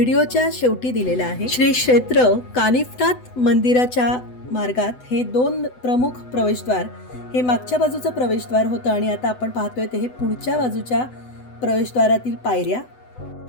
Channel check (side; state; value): right; late; 8.0 ms